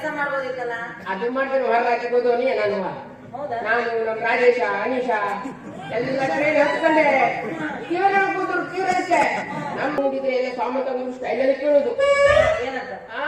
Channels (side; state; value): both; identical; correlation 1.00